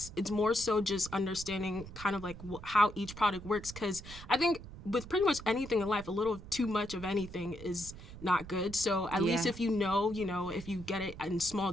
more so just understanding kind of like how each product works, because I think with pretty much anything in life, a little too much of anything is not good. So at least if you know, if you get it in small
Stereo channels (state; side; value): noise; right; rumble, 14 dB below the sound